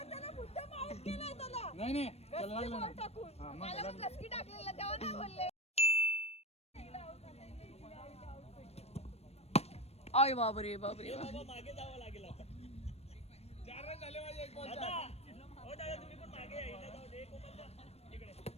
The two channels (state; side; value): late; right; 0.30 ms